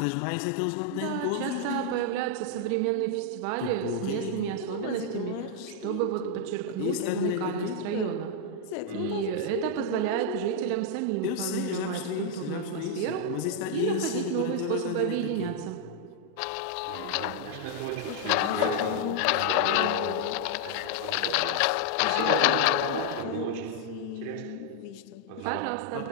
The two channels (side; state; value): both; different; correlation -0.01